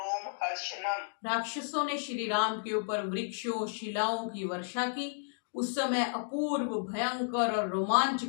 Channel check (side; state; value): right; silent; digital silence